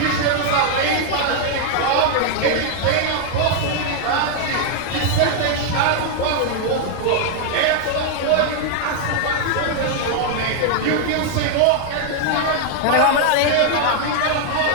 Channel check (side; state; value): both; different; correlation 0.00